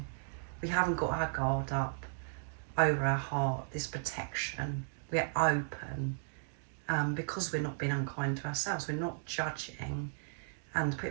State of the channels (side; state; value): left; silent; digital silence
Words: We haven't got our guard up over our heart, this protection. We're open because we're not being unkind to ourselves. We're not judging and